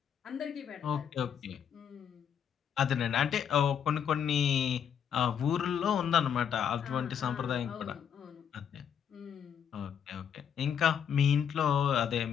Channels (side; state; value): right; quieter; 8.2 dB